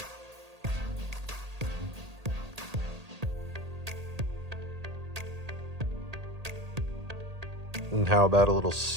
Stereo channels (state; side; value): late; left; 1.8 ms